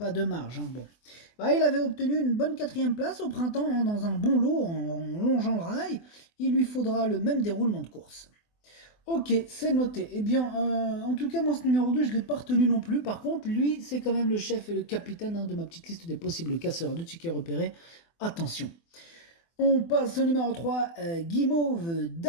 de marge, hein. Bon. Il avait obtenu une bonne 4e place au printemps, hein, dans un bon lot en longeant le rail. Il lui faudra le même déroulement de course. Ok, c'est noté. Eh bien, en tout cas, moi, ce numéro 2, je ne l'ai pas retenu non plus. Par contre, lui, c'est quand même le chef et le capitaine, hein, de ma petite liste des possibles casseurs de tickets repérés. Attention. On passe au numéro 3, Guimauve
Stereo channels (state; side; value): late; right; 24 ms